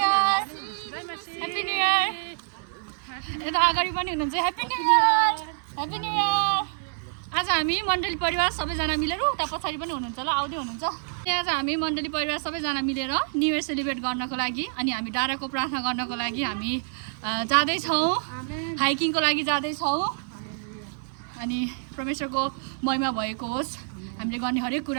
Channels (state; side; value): silent; left; digital silence